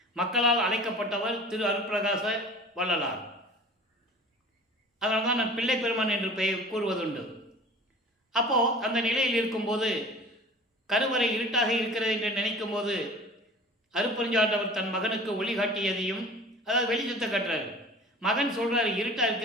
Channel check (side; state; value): both; normal; correlation 0.42